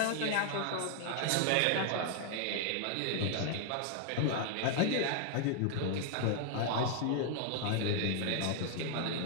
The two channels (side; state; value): both; different; correlation 0.00